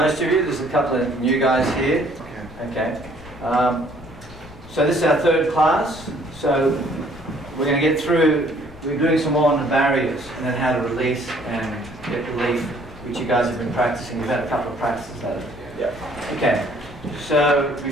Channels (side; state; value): left; noise; rumble, 20 dB below the sound